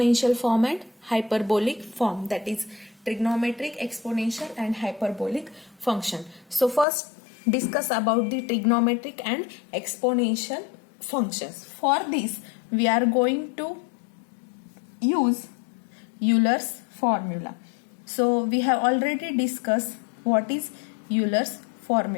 form and hyperbolic form. That is trigonometric, exponential and hyperbolic function. So first discuss about the trigonometric and exponential functions. For this, we are going to use Euler's formula. So we have already discussed what is Euler's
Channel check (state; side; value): drops out; right; at 6.9 s